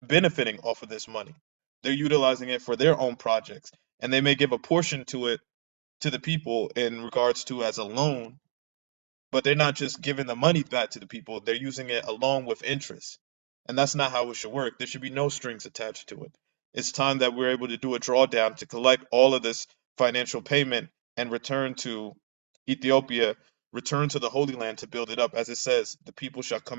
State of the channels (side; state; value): left; silent; digital silence